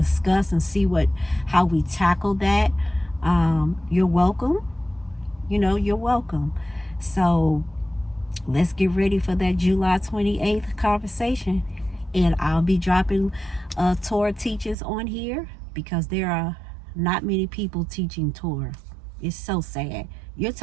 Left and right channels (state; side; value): drops out; left; at 14.8 s